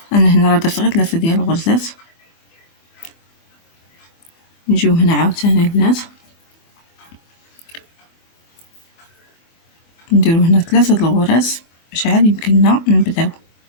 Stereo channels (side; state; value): right; late; 24 ms